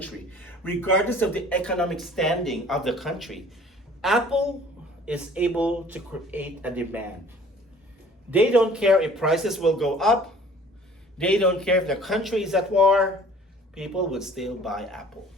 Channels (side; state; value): both; normal; correlation 0.51